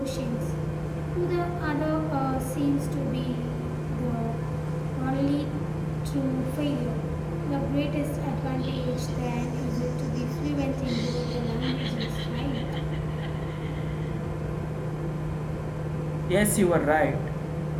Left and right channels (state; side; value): identical; both; correlation 1.00